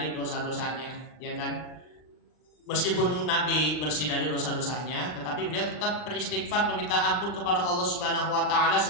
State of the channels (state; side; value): late; right; 40 ms